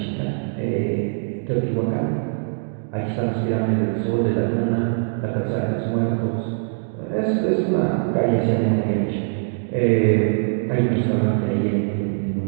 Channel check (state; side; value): silent; left; digital silence